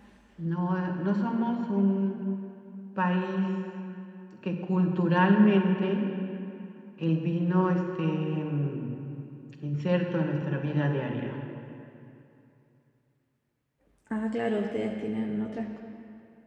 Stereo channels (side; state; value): both; identical; correlation 1.00